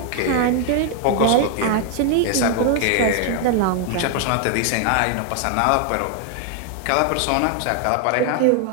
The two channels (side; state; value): both; different; correlation 0.00